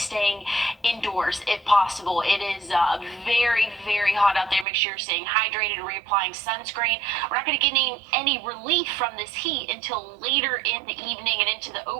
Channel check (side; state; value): left; drops out; at 4.7 s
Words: indoors if possible. It is very, very hot out there. Make sure you're staying hydrated, reapplying sunscreen. We're not going to get any relief from this heat until later in the evening and into the